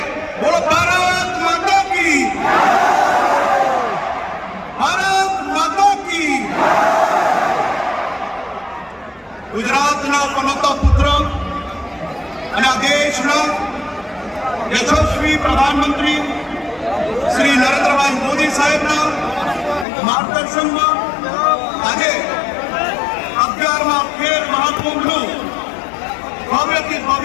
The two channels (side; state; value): right; drops out; at 19.9 s